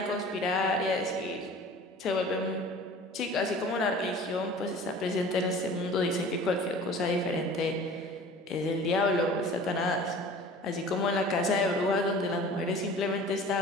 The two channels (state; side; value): normal; both; correlation 0.43